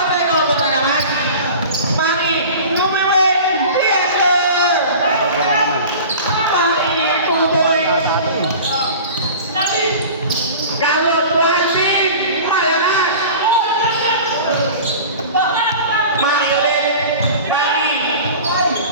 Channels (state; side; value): inverted; both; correlation -0.38